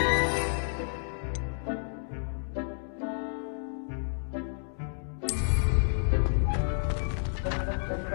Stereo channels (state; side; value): silent; right; digital silence